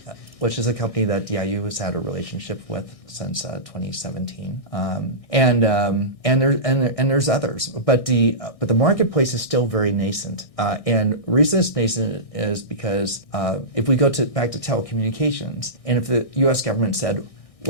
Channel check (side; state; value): right; late; 1.6 ms